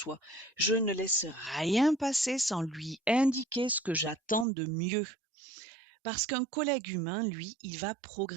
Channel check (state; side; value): drops out; left; at 4.5 s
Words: Je ne laisse rien passer sans lui indiquer ce que j'attends de mieux. Parce qu'un collègue humain, lui, il va